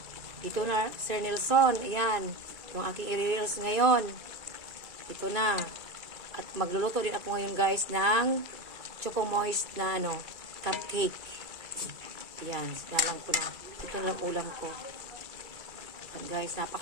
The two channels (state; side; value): late; left; 2.3 ms